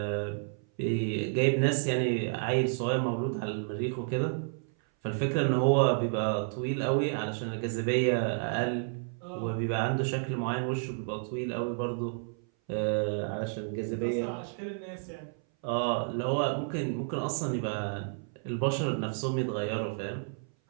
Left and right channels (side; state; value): left; silent; 57 dB below the other